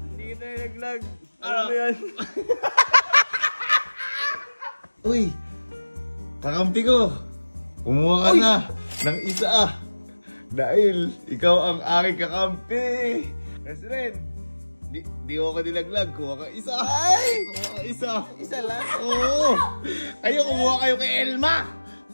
Hindi kita nilaglag. Ano ba yan? Uy! Kakampi ko! Kumuha ka na ng isa Dahil ikaw ang aking kakampi! Nasrin! Di ko nilaglag. Kuha ka isa. Ay! Kuha ka isa. Isa lang? Oo. Kayo, kumuha kayo kay Elma.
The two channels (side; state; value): both; inverted; correlation -1.00